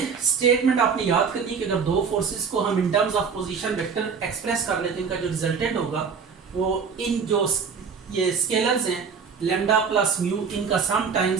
स्टेटमेंट आपने याद करनी है कि अगर दो फोर्सेस को हम इन terms of position vector express कर लेते हैं, इनका जो रिजल्टेंट होगा वो इन जो ये स्केलर्स हैं लेमडा प्लस म्यू, इनका sum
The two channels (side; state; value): left; quieter; 6.0 dB